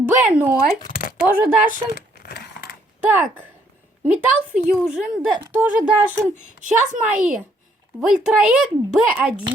Тоже Дашин. Так, Металл Фьюжн тоже Дашин. Сейчас мои. Вольтраек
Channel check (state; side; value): normal; both; correlation 0.68